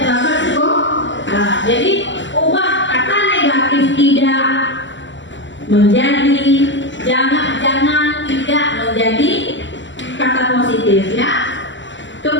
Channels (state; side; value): late; right; 0.54 ms